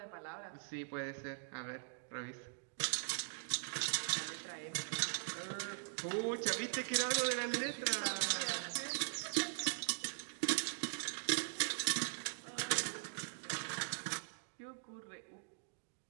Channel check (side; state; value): left; silent; digital silence